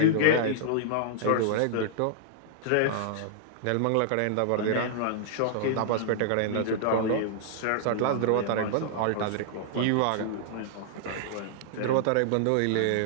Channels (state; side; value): different; both; correlation -0.01